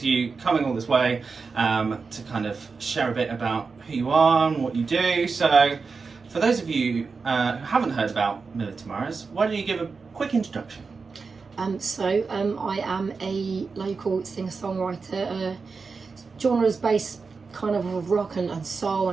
you coming all this way to kind of share a bit about who you are and what you do. So for those of you who haven't heard about Millie Thimaras, why don't you give a quick introduction? I am a local singer-songwriter. Genres based kind of rock and soul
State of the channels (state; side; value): quieter; left; 4.7 dB